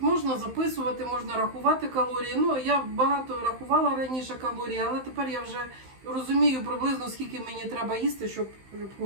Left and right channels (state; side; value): late; left; 15 ms